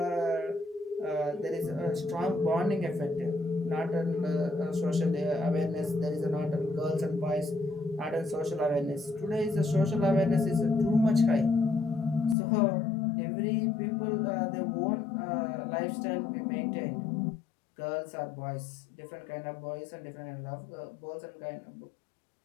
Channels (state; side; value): drops out; right; at 12.4 s